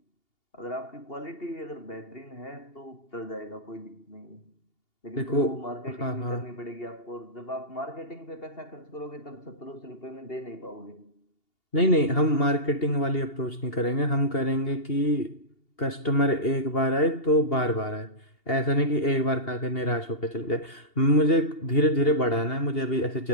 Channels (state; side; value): late; right; 2.8 ms